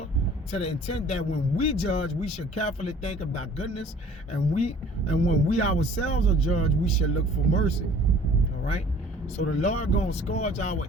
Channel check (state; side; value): normal; both; correlation 0.51